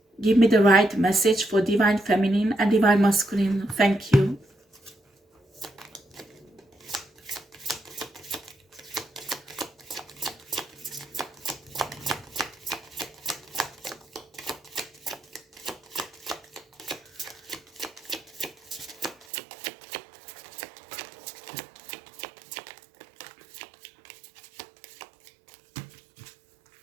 Give me the right message for divine feminine and divine masculine. Thank you.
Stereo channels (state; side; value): drops out; left; at 19.2 s